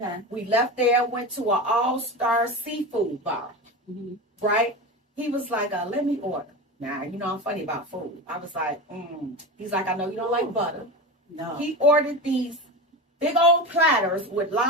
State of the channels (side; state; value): both; normal; correlation 0.25